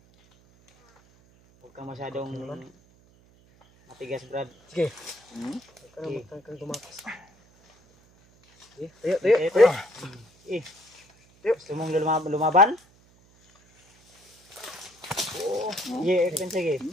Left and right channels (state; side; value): noise; right; hum, 30 dB below the sound